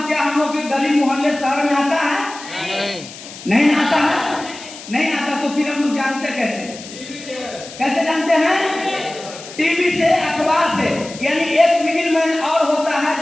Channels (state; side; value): noise; left; hiss, 15 dB below the sound